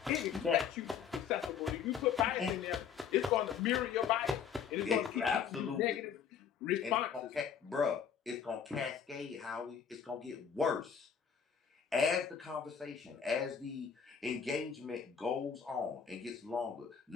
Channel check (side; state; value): right; quieter; 7.3 dB